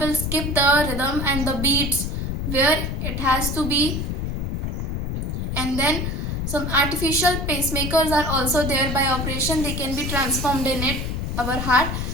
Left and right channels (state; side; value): noise; left; rumble, 2 dB below the sound